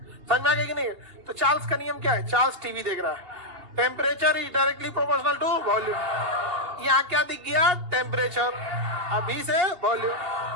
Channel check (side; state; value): left; late; 2.8 ms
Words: समझ में आ गया कि नहीं? तो चार्ल्स का नियम क्या है? चार्ल्स टीवी देख रहा है, temperature is directly proportional to volume. यहाँ क्या दिख गया? टेम्परेचर। अभी से वॉल्यूम